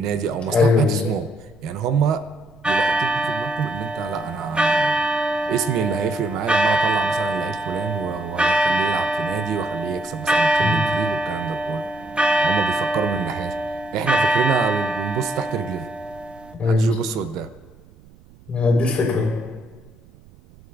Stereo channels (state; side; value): noise; right; rumble, 25 dB below the sound